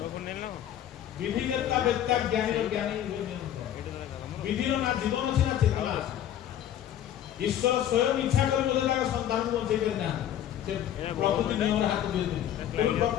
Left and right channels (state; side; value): quieter; right; 11.0 dB